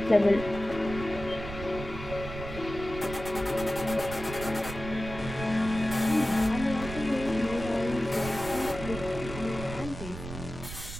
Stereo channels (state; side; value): noise; right; rumble, 10 dB below the sound